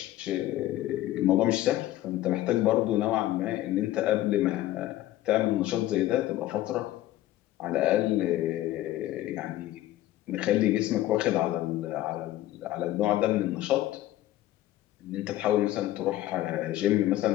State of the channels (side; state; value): right; quieter; 14.8 dB